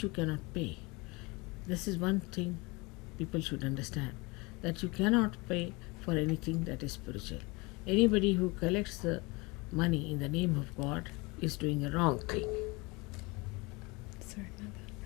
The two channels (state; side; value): quieter; right; 25.9 dB